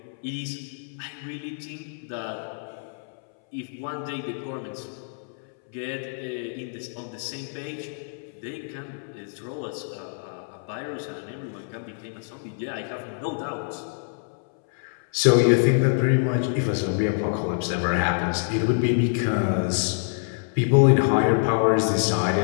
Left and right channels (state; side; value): silent; right; 61 dB below the other